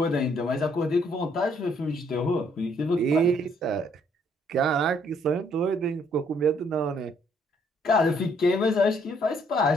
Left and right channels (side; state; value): both; normal; correlation 0.67